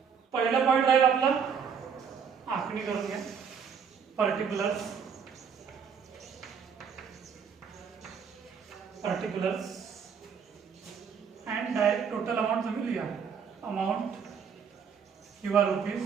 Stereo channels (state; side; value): quieter; left; 6.8 dB